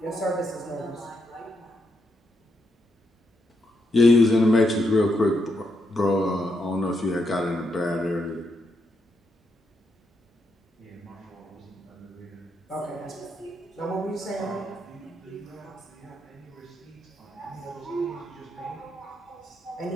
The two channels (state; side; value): normal; both; correlation 0.80